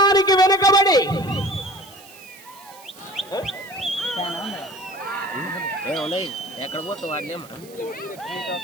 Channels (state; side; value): noise; right; hiss, 21 dB below the sound